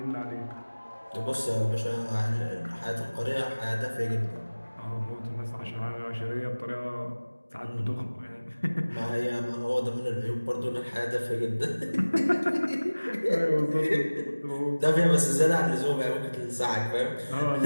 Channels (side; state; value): both; inverted; correlation -1.00